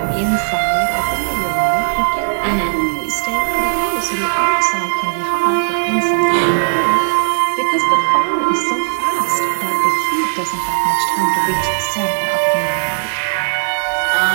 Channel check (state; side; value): silent; left; 66 dB below the other